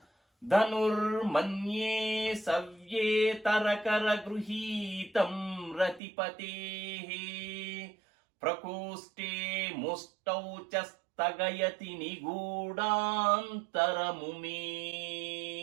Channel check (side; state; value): left; drops out; at 6.0 s